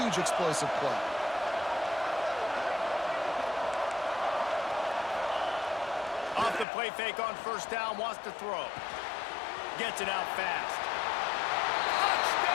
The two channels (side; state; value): right; drops out; at 6.7 s